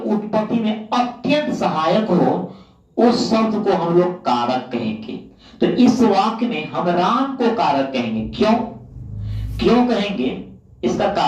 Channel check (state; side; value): identical; both; correlation 1.00